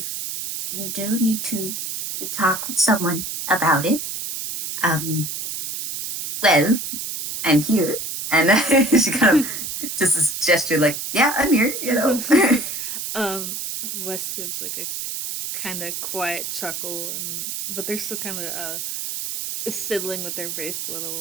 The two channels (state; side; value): noise; right; hiss, 5 dB below the sound